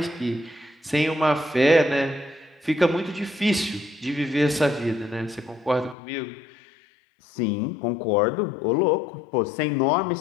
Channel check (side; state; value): right; drops out; at 6.0 s